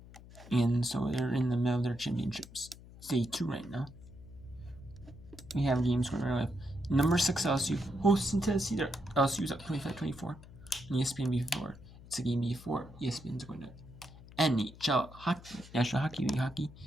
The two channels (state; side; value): noise; left; hum, 19 dB below the sound